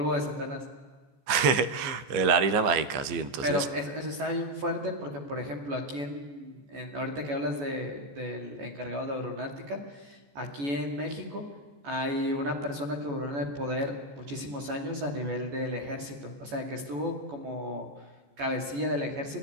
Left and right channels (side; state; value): left; late; 15 ms